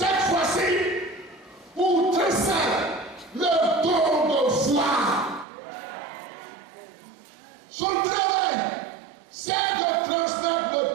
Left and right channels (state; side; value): drops out; left; at 5.5 s